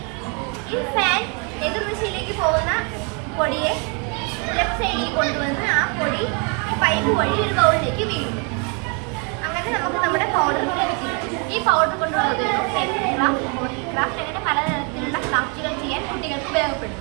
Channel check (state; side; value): quieter; left; 35.0 dB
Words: ഈ ഫാൻ എതിർ ദിശയിലേക്ക് പോകുന്ന പൊടിയെ ലെഫ്റ്റ് സൈഡിലേക്ക് കൊണ്ടുവന്ന് ആ പൊടി ഈ പൈപ്പ് വഴി ഒരു ബൗളിലേക്ക് വീഴുന്നു. അങ്ങനെ നമുക്ക് നമ്മുടെ പൗഡർ ലഭിക്കുന്നു. ഈ പൗഡർ കൊണ്ടുള്ള ഉപയോഗം പെൻ ക്രാഫ്റ്റ്, ക്രാഫ്റ്റ് അങ്ങനെ പലതരത്തിലുള്ള ക്രാഫ്റ്റുകൾ ചെയ്യാൻ കുട്ടികൾക്ക്